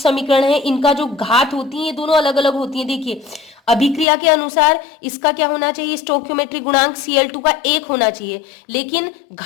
है, इनका जो घात होती है, ये दोनों अलग अलग होती है। देखिए अभिक्रिया के अनुसार इसका क्या होना चाहिए? स्टोइकियोमेट्रिक गुणांक Cl2 का 1 होना चाहिए, लेकिन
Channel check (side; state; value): right; drops out; at 4.0 s